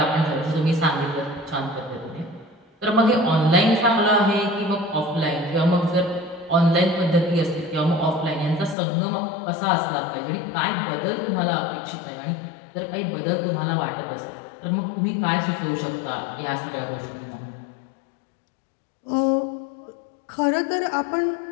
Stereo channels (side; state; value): right; drops out; at 8.8 s